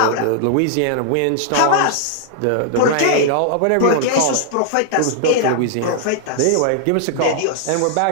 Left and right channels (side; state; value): both; different; correlation -0.01